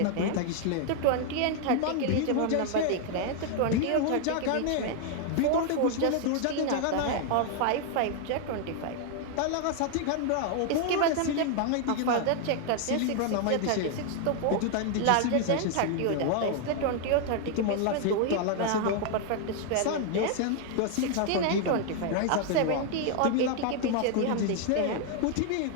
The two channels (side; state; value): both; different; correlation 0.00